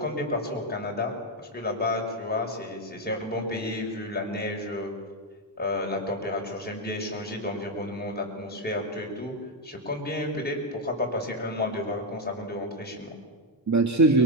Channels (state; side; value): normal; both; correlation 0.05